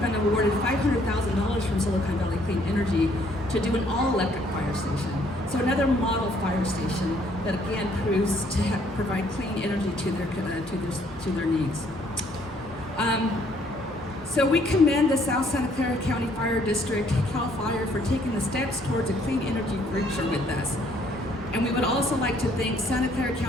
awarded $500,000 from Silicon Valley Clean Energy to do an all-electric fire station. So another model fire station that again proves to provide clean energy to their needs. So we commend the South Santa Clara County Fire District, CalFire, for taking the steps towards a clean energy future with us. And we would also like to thank Santa Clara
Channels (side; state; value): both; normal; correlation 0.65